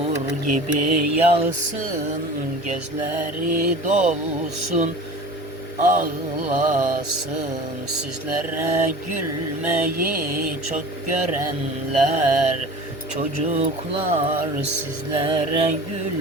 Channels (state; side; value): normal; both; correlation 0.39